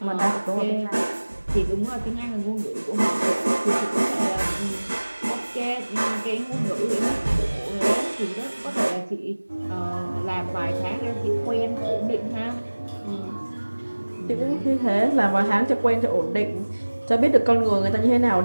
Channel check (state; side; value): inverted; both; correlation -1.00